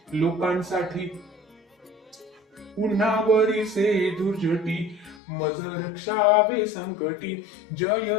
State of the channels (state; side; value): drops out; right; at 5.2 s